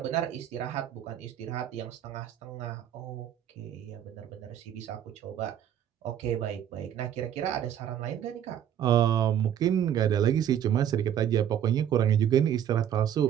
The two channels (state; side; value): quieter; left; 10.0 dB